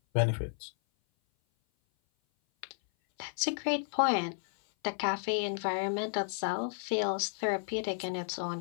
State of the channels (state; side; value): silent; right; 56 dB below the other